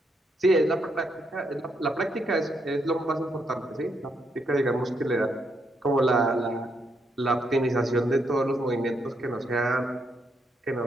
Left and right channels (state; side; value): normal; both; correlation 0.77